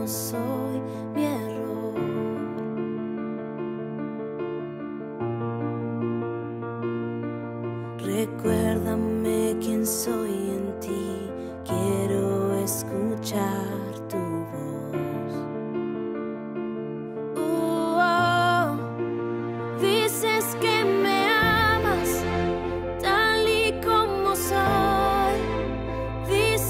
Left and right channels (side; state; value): both; identical; correlation 1.00